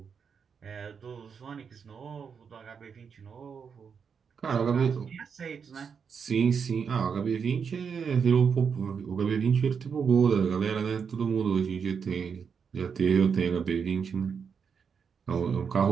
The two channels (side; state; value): left; quieter; 6.4 dB